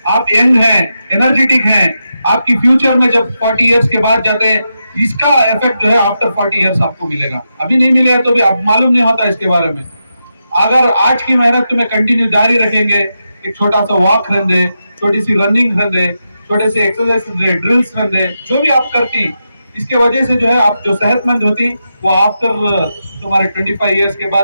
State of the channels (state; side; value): inverted; both; correlation -0.87